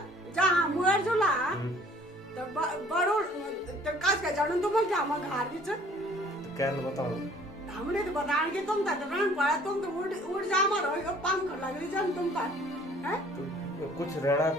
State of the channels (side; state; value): both; normal; correlation 0.55